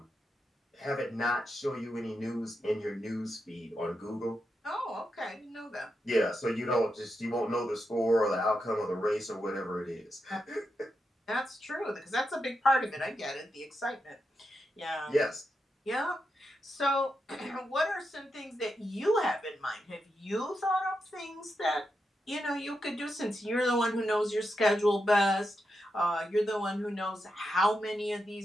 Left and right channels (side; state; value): both; normal; correlation 0.86